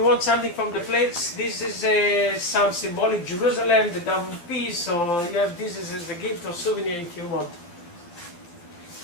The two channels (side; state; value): right; late; 12 ms